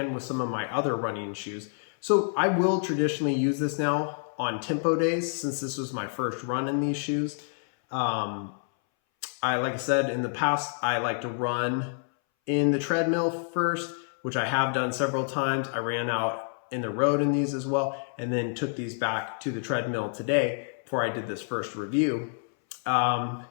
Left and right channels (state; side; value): silent; right; 59 dB below the other